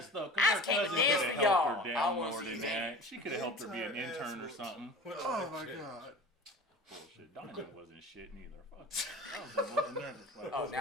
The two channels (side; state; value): both; normal; correlation 0.38